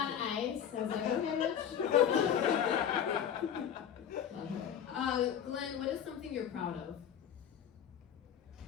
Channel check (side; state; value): right; quieter; 9.0 dB